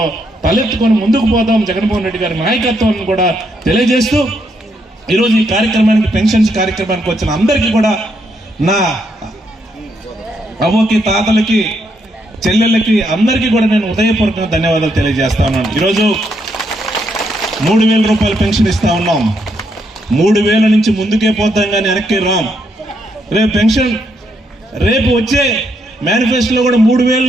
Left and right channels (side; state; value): both; normal; correlation 0.77